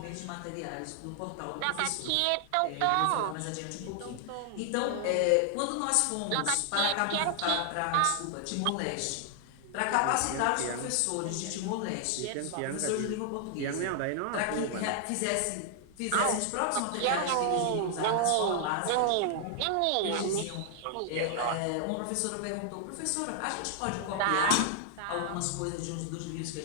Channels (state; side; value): different; both; correlation 0.00